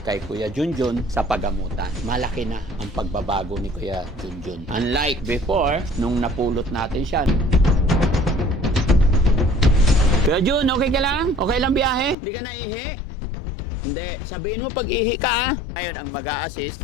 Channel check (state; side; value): drops out; right; at 12.2 s